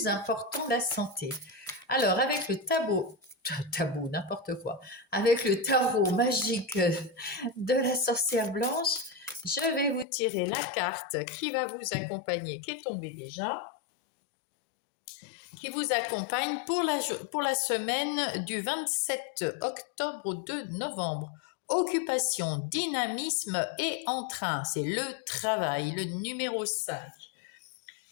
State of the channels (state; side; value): drops out; right; at 10.1 s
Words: important, la santé. Alors avec le tabou, n'importe quoi, avec le tarot magique de la sorcière blanche, je vais vous tirer la carte qui va vous accompagner, qui est tombée déjà, qui vous accompagne pour la semaine du 27 octobre au 2 novembre. Occupation, dynamisme et entrain, c'est le travail, le numéro 5.